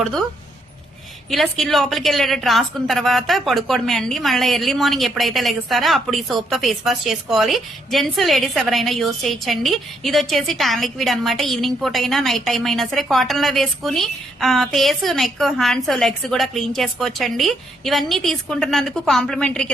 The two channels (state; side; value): normal; both; correlation 0.74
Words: ఇలా స్కిన్ లోపలికి వెళ్ళేటట్టు రాసుకున్న తర్వాత పడుకోవడమే అండి. మళ్ళీ ఎర్లీ మార్నింగ్ ఎప్పుడైతే లెగుస్తారో అప్పుడు ఈ సోప్ తో ఫేస్ వాష్ చేసుకోవాలి. జెంట్స్, లేడీస్ ఎవరైనా యూజ్ చేయొచ్చండి. ఇది వచ్చేసి టాన్ లిక్విడ్ అనమాట. ఈవినింగ్ పూట అయినా, నైట్ టైం అయినా సరే కాటన్ లో వేసుకుని ఫేస్, నెక్, హ్యాండ్స్, లెగ్స్ కూడా క్లీన్ చేసుకోవచ్చండి. ఇవన్నీ తీసుకుంటున్నందుకు కాంప్లిమెంటరీ